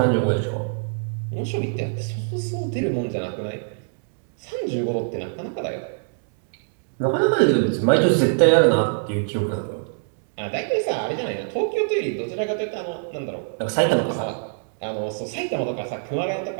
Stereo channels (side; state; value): left; silent; digital silence